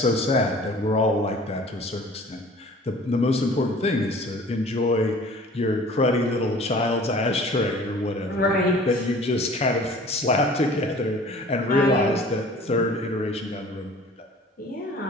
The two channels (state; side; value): normal; both; correlation 0.47